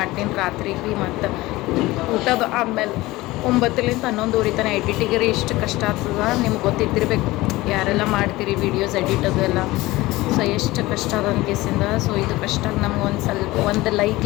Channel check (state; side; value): quieter; right; 19.2 dB